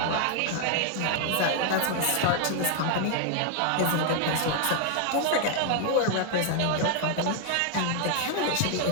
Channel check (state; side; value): different; both; correlation 0.00